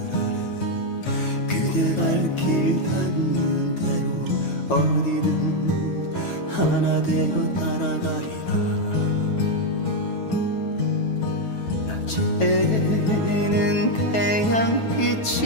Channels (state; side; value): late; right; 9.2 ms